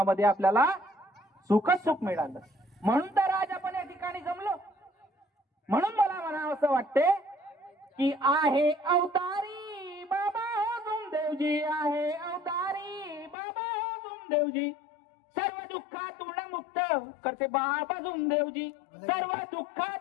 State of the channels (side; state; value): right; drops out; at 13.4 s